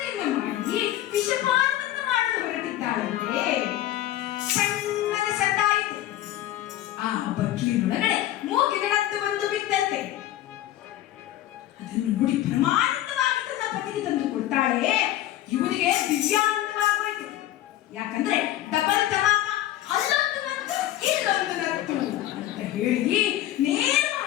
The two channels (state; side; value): quieter; right; 13.8 dB